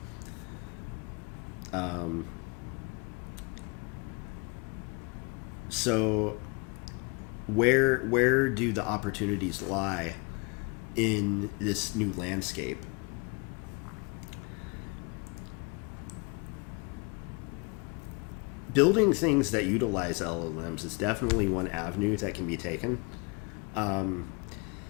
So where do the opportunities lie in this new landscape? Building things that utilize LLMs is definitely one avenue that can be taken. I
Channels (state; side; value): quieter; right; 31.0 dB